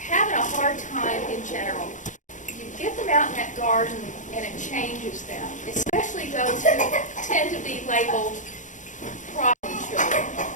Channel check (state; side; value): late; right; 0.36 ms